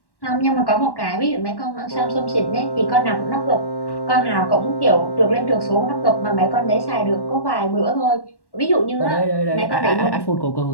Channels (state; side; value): late; right; 1.1 ms